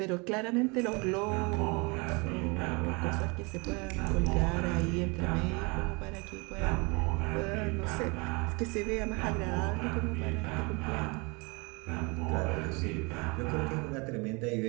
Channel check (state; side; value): quieter; left; 29.0 dB